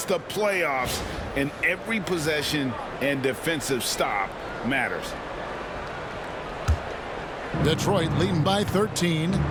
the playoffs, and every possession and defensive stop matters. Detroit leading by 13.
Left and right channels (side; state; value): both; identical; correlation 1.00